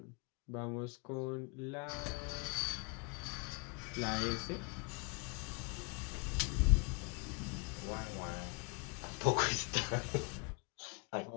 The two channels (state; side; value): quieter; right; 31.9 dB